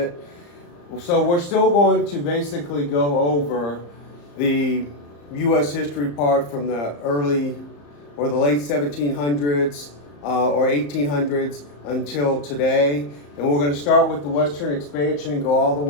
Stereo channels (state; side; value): late; right; 34 ms